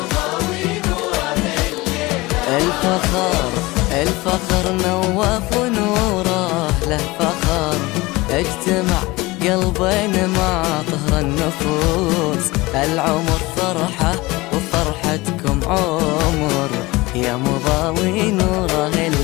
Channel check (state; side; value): quieter; right; 21.6 dB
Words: الفخر نوف ونوره له فخر، اجتمع قلبين مع طهر النفوس. العمر فرحة وفرحتكم عمر، يا مضاوي نوره